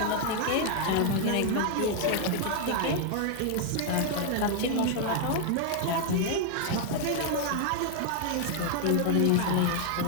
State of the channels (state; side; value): different; both; correlation 0.00